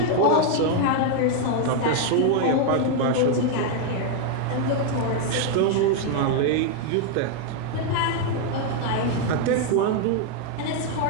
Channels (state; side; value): different; both; correlation 0.00